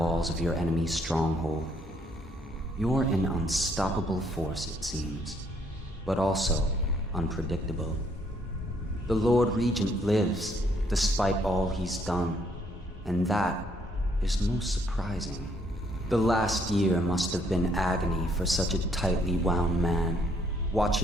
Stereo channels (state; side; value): normal; both; correlation 0.68